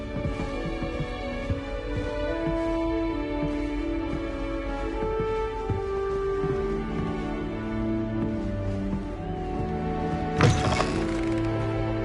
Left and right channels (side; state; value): both; identical; correlation 1.00